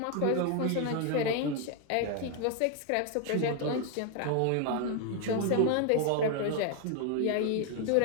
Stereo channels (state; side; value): different; both; correlation 0.01